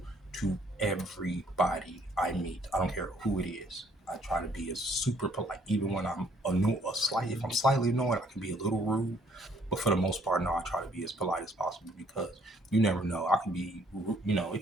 to everybody I meet. I don't care who it is. I try to be as super polite, even when I'm if I'm slightly annoyed, I can be a little rude. But for the most part, no, I try to be as polite as possible because you never know. I can be,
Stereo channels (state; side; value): normal; both; correlation 0.64